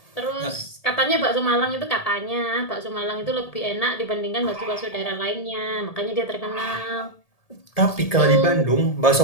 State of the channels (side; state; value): right; late; 1.7 ms